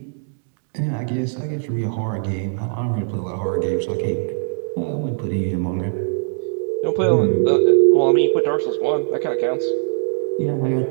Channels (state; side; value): silent; left; digital silence